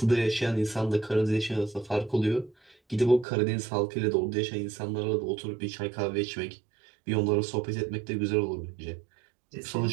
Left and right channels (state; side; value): drops out; left; at 3.2 s